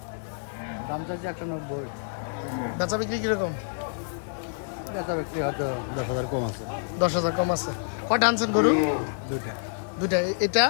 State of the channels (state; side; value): silent; right; digital silence